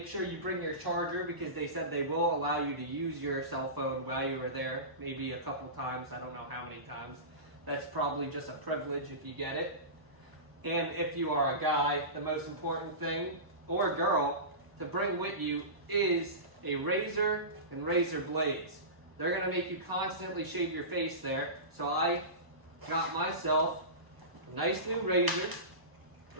sure you bring your charger because they said they will allow you to use your cell phone while you are there, maybe a couple times, I don't know how many times. That's probably just a privilege if you get it. And if you are a guy, the most important thing, or a girl, to bring with you is a razor and razor blades. They're going to make you constantly shave your face there. So I got myself a nice new razor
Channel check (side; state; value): left; late; 1.0 ms